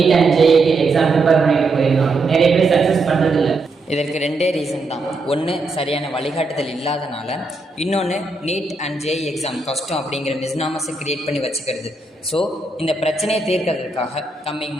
and JEE க்கு எக்ஸாம் ப்ரிப்பேர் பண்ணிட்டு போயிருந்தாங்க. நிறைய பேர் சக்ஸஸ் பண்றது இல்லை. இதற்கு ரெண்டே ரீசன் தான். ஒன்று, சரியான வழிகாட்டுதல் இல்லாதனால. இன்னொன்று, நீட் அண்ட் ஜேஇ எக்ஸாம் கஷ்டம் அப்படிங்கிற மிஸ்னாமஸை கிரியேட் பண்ணி வச்சுக்கிறது. ஸோ இந்த பிரச்சனையை தீர்க்கிறதுக்காக கம்மிங்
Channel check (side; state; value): left; quieter; 3.1 dB